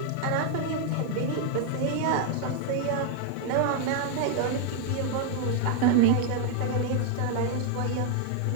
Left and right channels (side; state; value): both; different; correlation 0.00